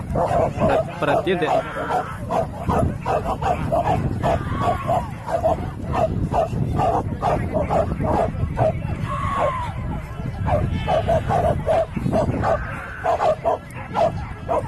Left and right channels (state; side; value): identical; both; correlation 1.00